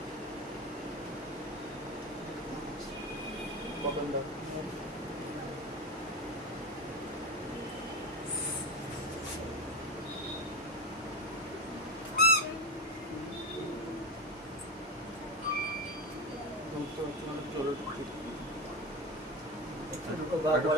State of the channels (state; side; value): normal; both; correlation 0.21